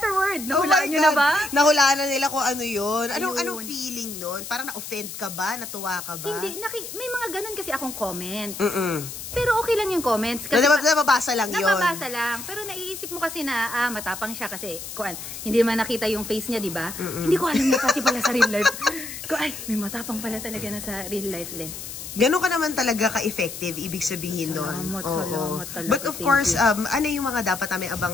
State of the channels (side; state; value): left; noise; hiss, 10 dB below the sound